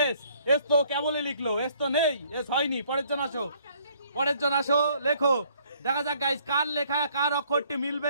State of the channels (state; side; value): inverted; both; correlation -0.62